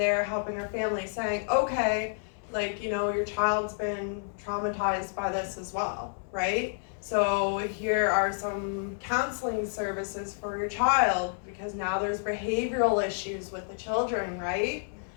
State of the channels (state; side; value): silent; right; digital silence